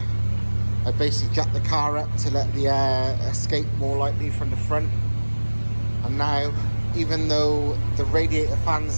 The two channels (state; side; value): inverted; both; correlation -1.00